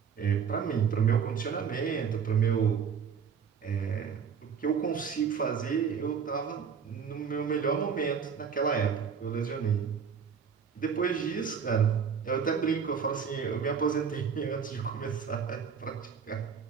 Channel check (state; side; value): quieter; left; 6.7 dB